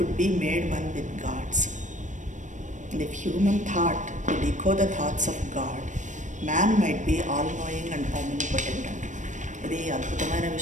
be made one with gods and if human thought could echo the thoughts of God, man might be all knowing and omnipotent. ఇది అద్భుతమైన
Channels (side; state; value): left; late; 0.36 ms